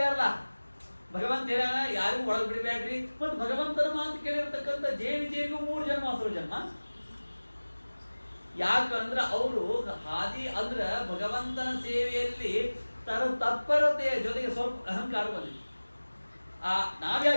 ಭಗವಂತ ಏನ ಯಾರಿಗೂ ಒಳಗೆ ಬಿಡಬೇಡ್ರಿ. ಮತ್ತು ಭಗವಂತನ ಮಾತು ಕೇಳಿರ್ತಕ್ಕಂಥ ಜೇವಿಗೂ 3 ಜನ್ಮ ಹಸುರು ಜನ್ಮ. ಯಾಕಂದ್ರೆ ಅವರು ಹಾದಿ ಅಂದ್ರ ಭಗವಂತನ ಸೇವೆಯಲ್ಲಿ ತತ್ಪರತೆಯ ಜೊತೆಗೆ ಸ್ವಲ್ಪ ಅಹಂಕಾರ ಬಂದಿದೆ.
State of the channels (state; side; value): inverted; both; correlation -1.00